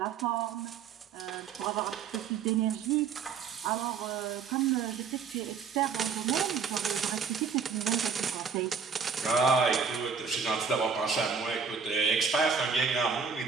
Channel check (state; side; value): quieter; left; 6.0 dB